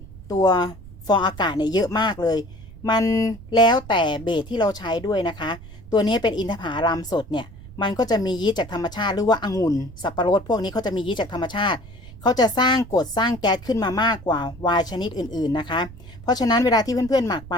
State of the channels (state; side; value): noise; right; rumble, 17 dB below the sound